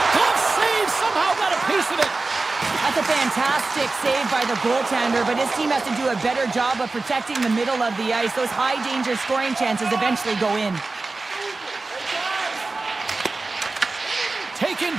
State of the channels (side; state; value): left; quieter; 3.5 dB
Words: Glove save, somehow got a piece of it. That's a fantastic save by the goaltender, but his team has to do a better job of protecting the middle of the ice. Those high-danger scoring chances eventually go in. Taken